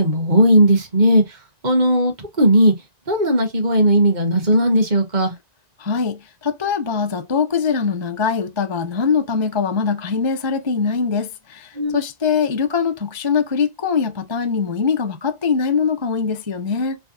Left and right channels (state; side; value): late; left; 1.9 ms